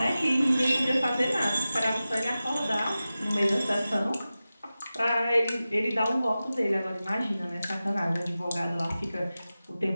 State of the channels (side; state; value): both; inverted; correlation -0.95